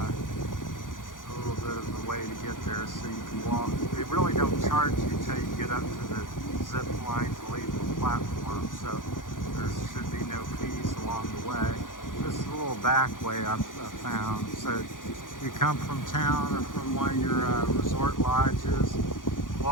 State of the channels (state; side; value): late; right; 0.89 ms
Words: A little bit of the way to get there so you can walk. They really don't charge you till you get up to the zip line to leave the platform, so there should be no fees along the way. This is a little back way I've found. So you come from town or from one of your resort lodges,